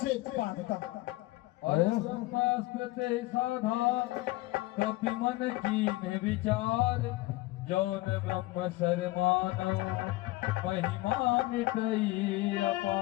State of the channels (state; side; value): quieter; right; 19.6 dB